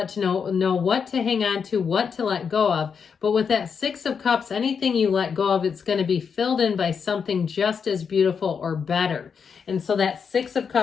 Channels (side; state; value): right; quieter; 6.4 dB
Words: what to hang on to, what to let go of. But with that Six of Cups, anything you let go of, it's going to be filled in by something just as beautiful or better. And so that Six of